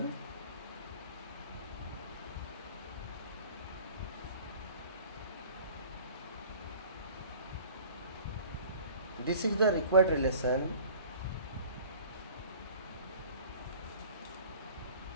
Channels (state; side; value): inverted; both; correlation -0.47